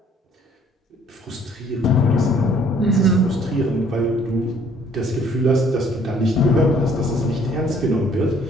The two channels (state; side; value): normal; both; correlation 0.60